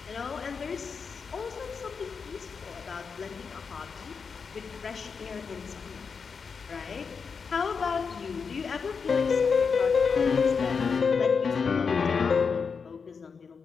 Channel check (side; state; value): right; quieter; 5.6 dB